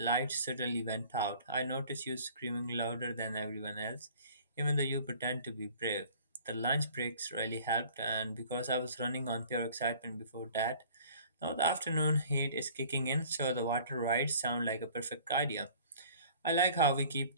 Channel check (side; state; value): both; inverted; correlation -0.50